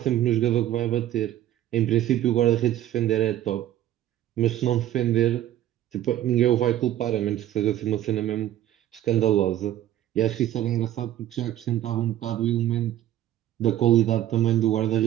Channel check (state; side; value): quieter; left; 12.6 dB